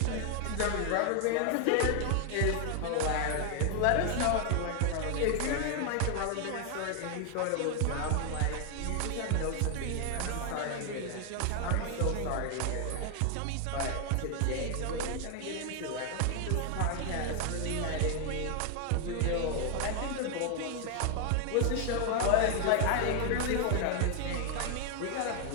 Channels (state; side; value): different; both; correlation 0.00